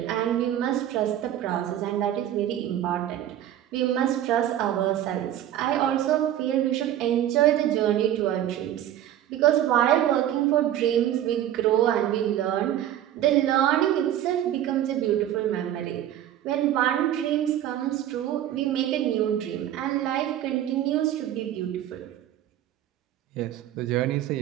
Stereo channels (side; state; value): left; quieter; 11.8 dB